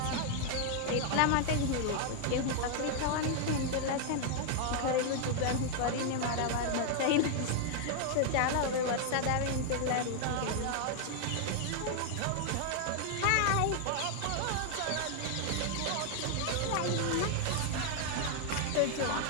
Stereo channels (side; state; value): both; different; correlation 0.00